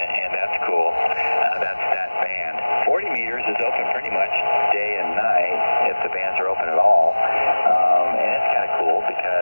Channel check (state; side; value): inverted; both; correlation -1.00